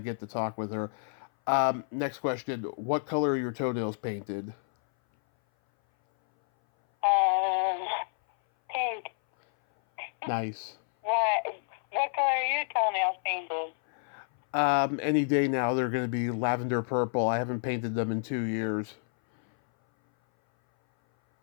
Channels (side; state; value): right; silent; 57 dB below the other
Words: to talk with her. Next question. What color are your toenails painted? Pink. Nice. What color are your toenails painted? Any day now they're going to be lavender purple. I haven't painted them in 2 years.